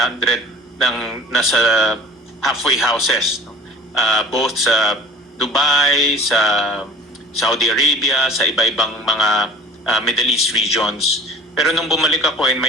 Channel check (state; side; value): normal; both; correlation 0.46